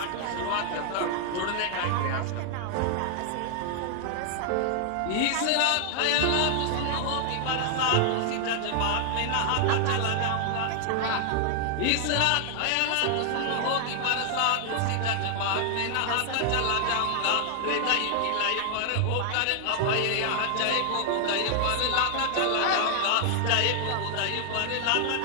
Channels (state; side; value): different; both; correlation 0.00